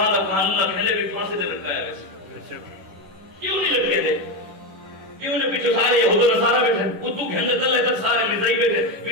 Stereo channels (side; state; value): left; late; 10 ms